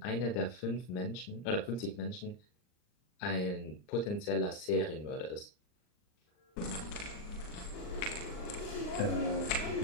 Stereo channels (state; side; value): late; right; 39 ms